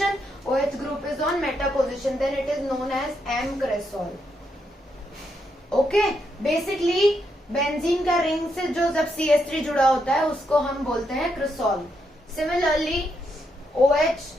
OH group is on meta position, then it is known as m-cresol. Okay, basically benzene का रिंग से जो जब CH3 जुड़ा होता है उसको हम बोलते हैं क्रेसॉल. सिमिलरली OH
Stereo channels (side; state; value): both; normal; correlation 0.80